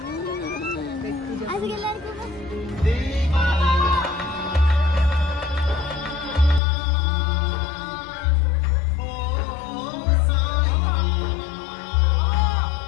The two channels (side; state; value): right; drops out; at 6.6 s